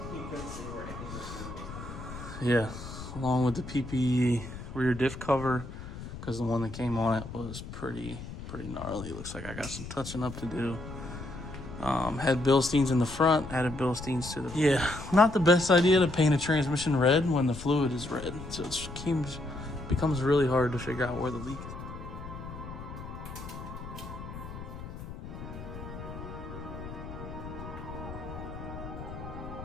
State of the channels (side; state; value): left; noise; rumble, 11 dB below the sound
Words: along with the PPE rear diff cover, because the one that came on it was pretty gnarly. Looks like I got some touching up to do. Had Bilsteins in the front, added Bilsteins to the... Yeah, not the best idea to paint a transmission red when the fluid is red. So it becomes really hard to figure out where the leak is.